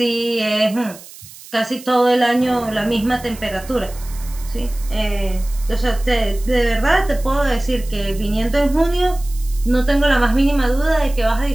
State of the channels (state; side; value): noise; right; hiss, 18 dB below the sound